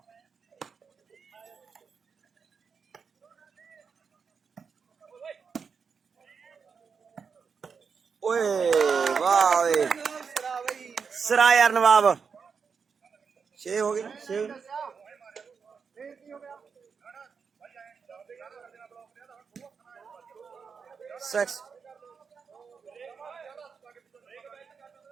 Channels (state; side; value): quieter; left; 5.9 dB